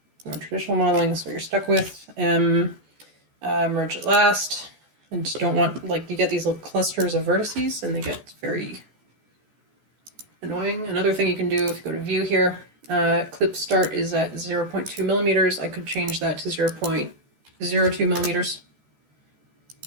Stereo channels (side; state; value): left; late; 14 ms